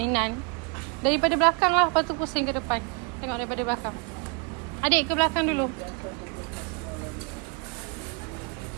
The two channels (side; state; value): left; quieter; 32.7 dB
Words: Daripada belakang lah. Lepas tu pusing ke depan. Tengok daripada belakang. Adik ke belakang dulu.